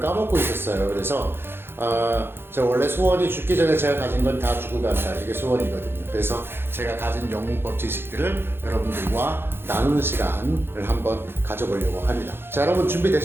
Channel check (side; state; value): left; late; 0.11 ms